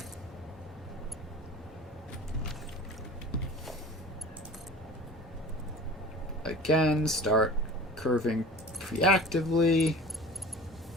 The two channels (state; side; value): normal; both; correlation 0.40